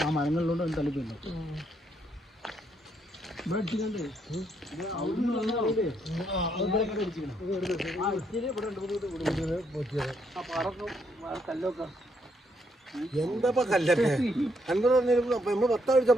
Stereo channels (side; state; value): both; normal; correlation 0.74